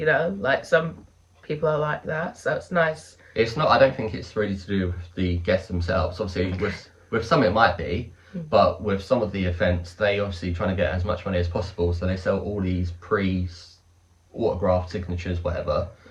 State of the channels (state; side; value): identical; both; correlation 1.00